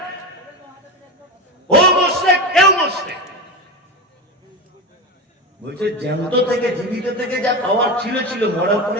ও মুশরিক, এও মুশরিক। বলছে জ্যান্ত থেকে, জীবিত থেকে যা পাওয়ার ছিল ছিল, মরার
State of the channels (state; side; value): normal; both; correlation 0.21